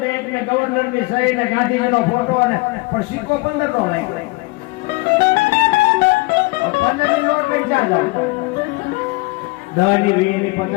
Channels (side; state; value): right; quieter; 24.7 dB